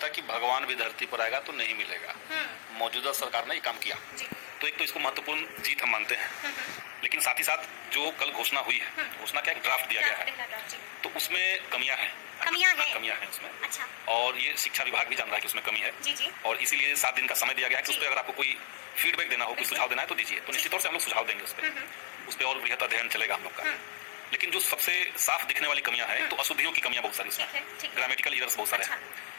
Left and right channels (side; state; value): right; silent; digital silence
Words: कि भगवान भी धरती पर आएगा तो नहीं मिलेगा। मौजूदा सरकार ने ये काम किया, तो एक तो इसको महत्वपूर्ण जीत हम मानते हैं। लेकिन साथ ही साथ जो कल घोषणा हुई है, घोषणा का एक ड्राफ्ट दिया गया है, तो उसमें कमियां हैं उसमें। अच्छा। और ये शिक्षा विभाग भी जान रहा है कि उसमें कमी है। जी। और इसीलिए 7 दिन का समय दिया गया है कि उस पर अगर आपको कोई फीडबैक देना हो, कोई सुझाव देना है तो दीजिए। तो निश्चित तौर से हम लोग सुझाव देंगे उस पर और बृहत अध्ययन चलेगा हम लोग का। लेकिन जो सबसे साफ दिखने वाली कमियां हैं, तो अशुद्धियों की कमियां बहुत सारी इसमें, ग्रामेटिकल एरर्स बहुत सारे हैं।